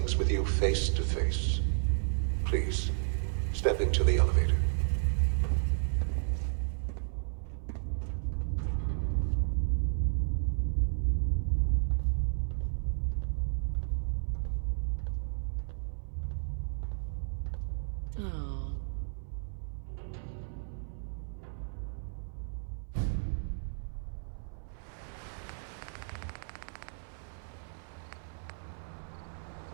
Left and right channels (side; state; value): left; silent; 56 dB below the other